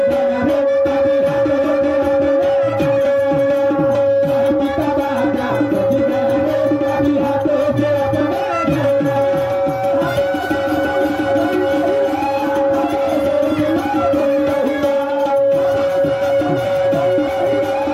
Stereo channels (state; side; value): identical; both; correlation 1.00